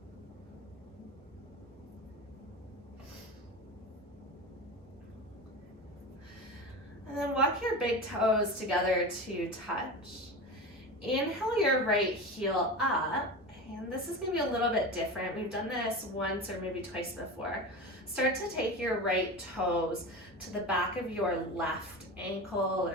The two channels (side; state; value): both; normal; correlation 0.27